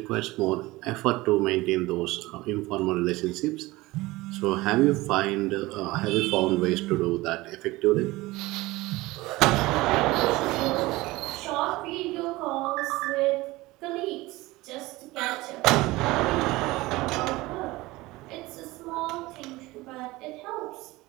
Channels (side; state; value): left; quieter; 20.0 dB